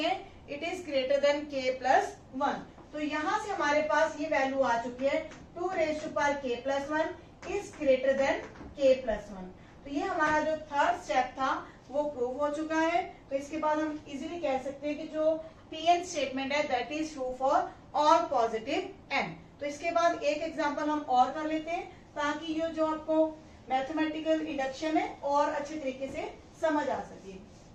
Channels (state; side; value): identical; both; correlation 1.00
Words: हैं it is greater than k plus 1। तो यहाँ से हमारे पास ये वैल्यू आ चुकी है 2k plus 1 is greater than k plus 1। तो ये हमारा जो थर्ड स्टेप था वो प्रूव हो चुका है। तो इसके बाद हम इजीली कह सकते हैं कि जो Pn स्टेटमेंट है that is true for all positive n। तो इसके बाद एक एग्जांपल हम और कर लेते हैं ताकि ये जो आपको मैथमेटिकल इंडक्शन है और अच्छे तरीके से समझ आ सके।